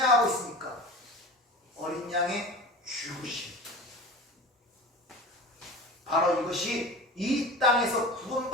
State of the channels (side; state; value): both; normal; correlation 0.34